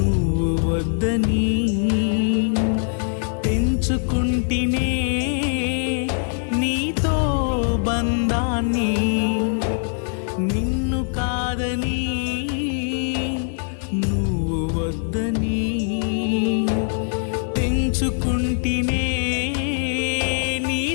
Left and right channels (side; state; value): right; silent; digital silence